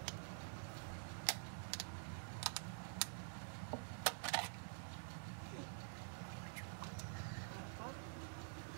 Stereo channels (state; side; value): silent; left; digital silence